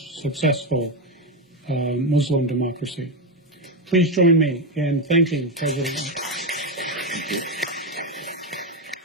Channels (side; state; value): both; normal; correlation 0.10